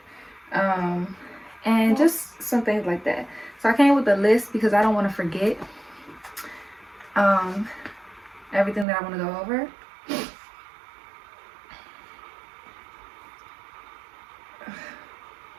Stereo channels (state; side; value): drops out; left; at 8.8 s